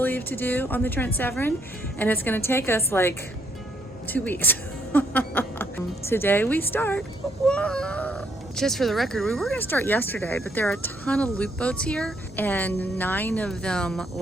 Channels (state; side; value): normal; both; correlation 0.72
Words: to do on the Trent Severn, and it's going to take us like 2 weeks. Today we start. Whoa. Just for the record, we were going to start yesterday, but there are a ton of loop boats here, and 9 of them